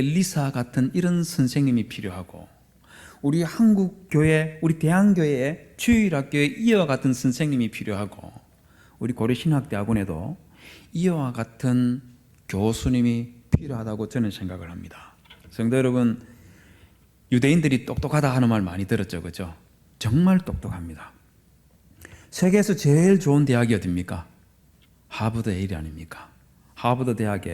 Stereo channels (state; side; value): identical; both; correlation 1.00